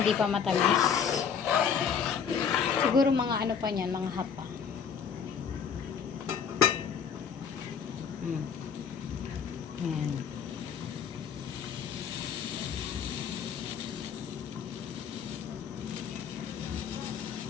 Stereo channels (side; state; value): right; quieter; 7.1 dB